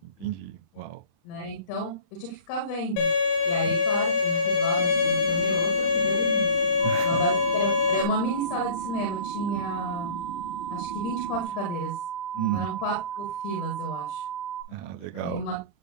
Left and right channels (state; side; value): late; right; 35 ms